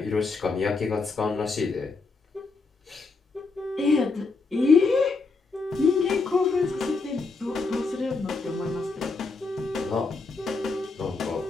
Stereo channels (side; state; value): right; quieter; 4.0 dB